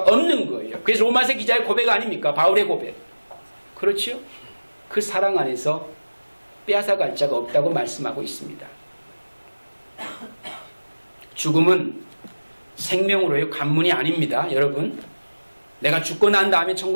없는 거예요. 그래서 로마서 기자의 고백 아닙니까? 바울의 고백. 그렇죠? 그 사랑 안에서 빼앗아갈 자가 없다고 말씀하고 있습니다. 죽음은 생명으로의 관문이 아닙니다. 여러분, 내가 죽고 난 다음에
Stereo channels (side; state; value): both; inverted; correlation -1.00